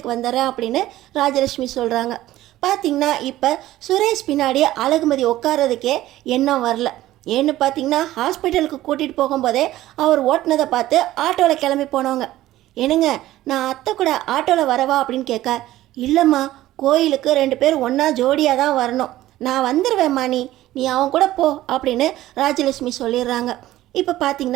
வந்துடுறேன் அப்படின்னு ராஜலக்ஷ்மி சொல்கிறாங்க. பார்த்திங்கன்னா இப்போ சுரேஷ் பின்னாடி அழகுமதி உட்காரதுக்கே எண்ணம் வரல. ஏன்னு பார்த்தீங்கன்னா ஹாஸ்பிட்டலுக்கு கூட்டிகிட்டு போகும்போதே அவர் ஓட்டினதை பார்த்து ஆட்டோவில் கிளம்பி போனவங்க. என்னங்க நான் அத்தை கூட ஆட்டோவில் வரவா அப்படின்னு கேட்க, இல்லைம்மா கோயிலுக்கு 2 பேர் ஒன்றா ஜோடியாக தான் வரணும், நான் வந்துடுவேம்மா, நீ அவன் கூட போ அப்படின்னு ராஜலட்சுமி சொல்லிடுறாங்க. இப்போ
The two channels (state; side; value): quieter; left; 15.2 dB